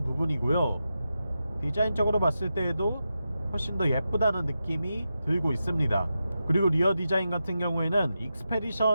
부분이고요. 디자인적으로 봤을 때에도 훨씬 더 예쁘다는 느낌이 들고 있습니다. 그리고 리어 디자인 같은 경우에는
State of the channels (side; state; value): both; inverted; correlation -0.89